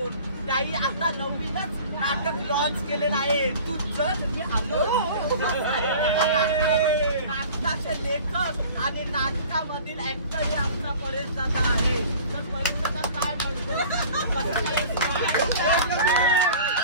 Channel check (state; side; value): inverted; both; correlation -0.43